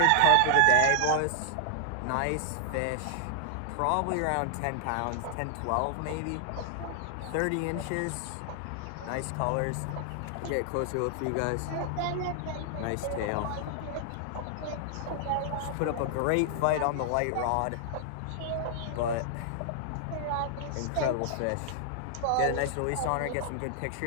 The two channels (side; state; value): both; different; correlation 0.00